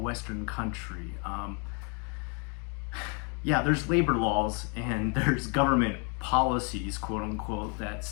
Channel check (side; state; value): right; quieter; 36.6 dB